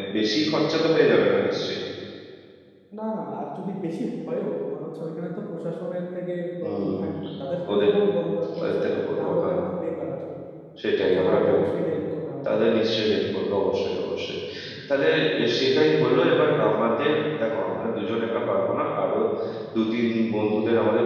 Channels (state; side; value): identical; both; correlation 1.00